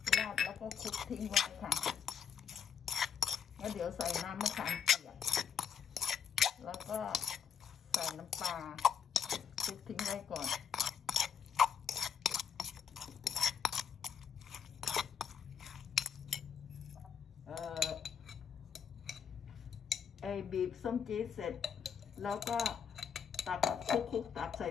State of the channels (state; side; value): quieter; right; 7.4 dB